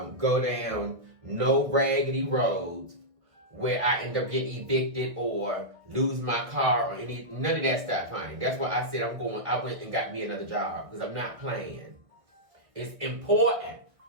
go down no raggedy roads where I end up getting evicted or lose my car or none of that stuff, honey. That's why I said I went and got me another job because I'm not playing. It's important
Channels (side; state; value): left; late; 1.7 ms